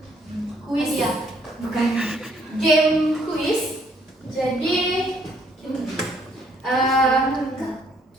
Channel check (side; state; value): both; normal; correlation 0.66